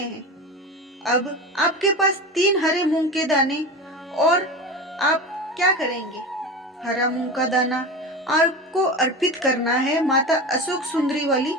अब आपके पास 3 हरे मूंग के दाने और आप क्या करेंगे? हरा मूंग का दाना आपको अर्पित करना है माता अशोक सुंदरी वाली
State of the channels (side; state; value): both; normal; correlation 0.27